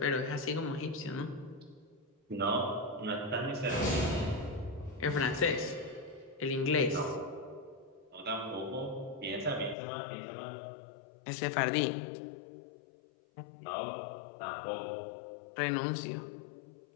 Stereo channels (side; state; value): right; drops out; at 9.8 s